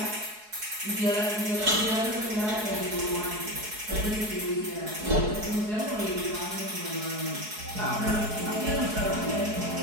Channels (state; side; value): late; left; 4.7 ms